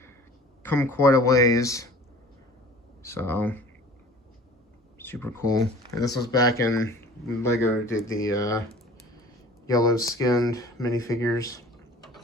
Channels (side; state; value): both; normal; correlation 0.46